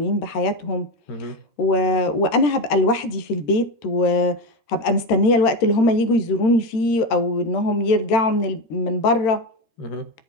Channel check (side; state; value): right; late; 13 ms